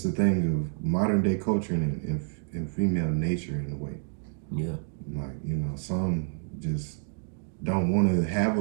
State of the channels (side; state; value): left; silent; 59 dB below the other